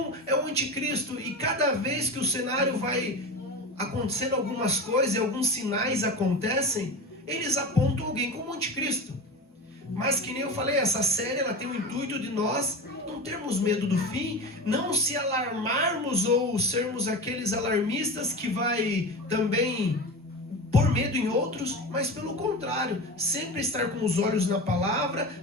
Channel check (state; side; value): normal; both; correlation 0.27